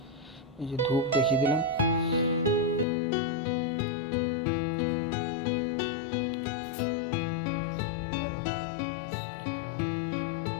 এই যে ধূপ দেখিয়ে দিলাম।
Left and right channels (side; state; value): right; drops out; at 2.9 s